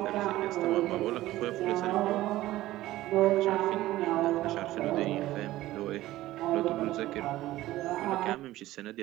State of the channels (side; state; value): left; quieter; 16.0 dB